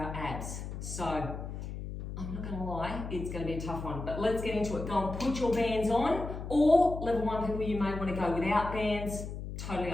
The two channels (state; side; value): noise; left; hum, 7 dB below the sound